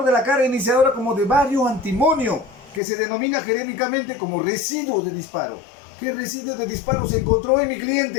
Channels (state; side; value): drops out; right; at 2.8 s